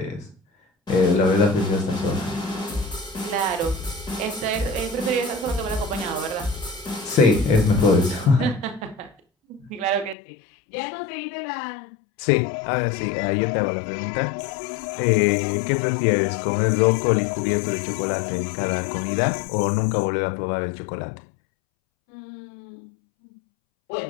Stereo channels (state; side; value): drops out; right; at 10.2 s